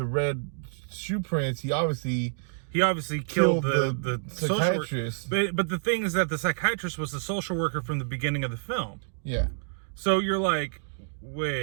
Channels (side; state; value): left; silent; digital silence